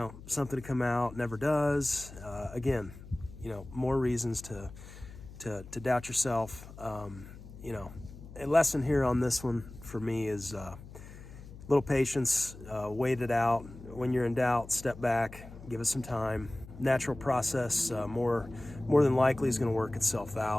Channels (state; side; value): noise; left; hum, 16 dB below the sound